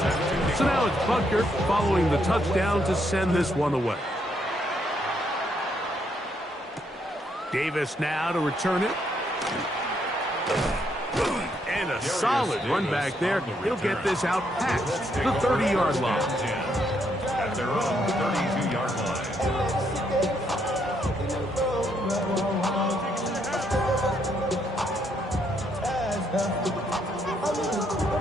35-0. So now it's Butker following the touchdown to send this one away. Davis now to return it. And a solid run back there. He'll get this out past the 30-yard line. At their own 32-yard line.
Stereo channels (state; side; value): normal; both; correlation 0.74